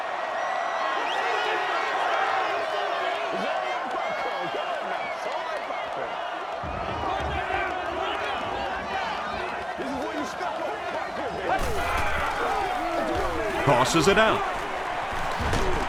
Tosses it out.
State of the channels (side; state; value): both; identical; correlation 1.00